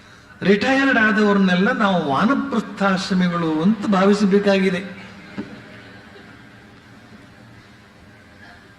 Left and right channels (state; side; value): identical; both; correlation 1.00